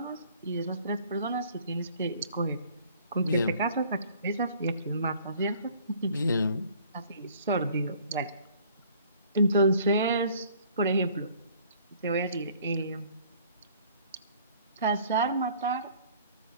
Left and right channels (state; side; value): inverted; both; correlation -0.55